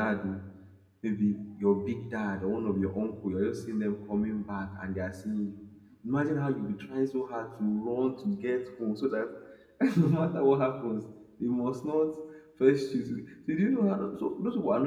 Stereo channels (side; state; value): both; identical; correlation 1.00